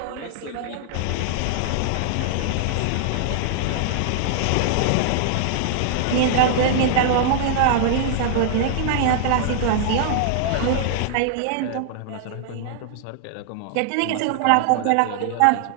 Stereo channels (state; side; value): different; both; correlation -0.01